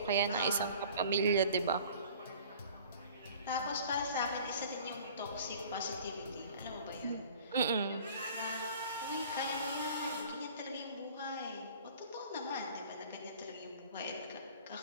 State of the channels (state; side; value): inverted; both; correlation -0.47